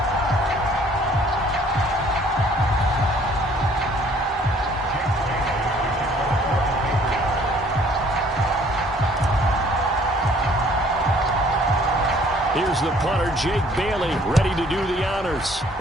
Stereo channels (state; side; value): normal; both; correlation 0.58